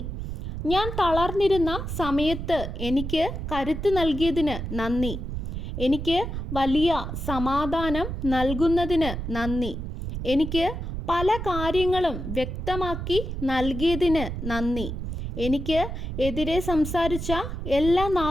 ഞാൻ തളർന്നിരുന്ന സമയത്ത് എനിക്ക് കരുത്ത് നൽകിയതിന് നന്ദി. എനിക്ക് വലിയ സമാധാനം നൽകുന്നതിന് നന്ദി. എനിക്ക് പല കാര്യങ്ങളും വ്യക്തമാക്കി നൽകിയതിന് നന്ദി. എനിക്ക് എതിരെ സംസാരിച്ച എല്ലാ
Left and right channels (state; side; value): noise; right; rumble, 5 dB below the sound